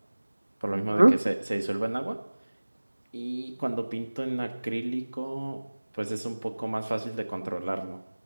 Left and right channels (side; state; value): both; inverted; correlation -1.00